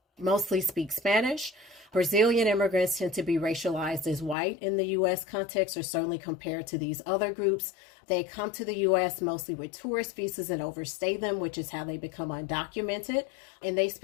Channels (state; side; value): drops out; right; at 4.4 s